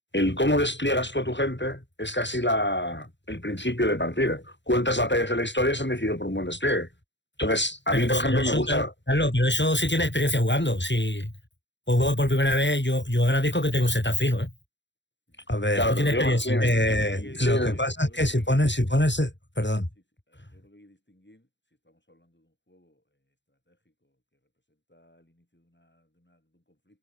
el cómo despliegas tú a tu gente es casi el principio de partida. ¿Cuántas batallas de la historia se han decidido por un buen despliegue? Entonces, a mí, por ejemplo, me gusta... Claro, pero eso sí tiene experiencia jugando. Si juego por primera vez, yo agradezco que tenga un setup fijo, ¿eh? A ver, Claro, tiene pero digo, experiencia. sí, lo que pasa es que si pones, perdón, Sí, sí, yo creo que hay que distinguir si estamos hablando de un juego estratégico que representa el inicio de un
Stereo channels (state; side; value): late; right; 0.52 ms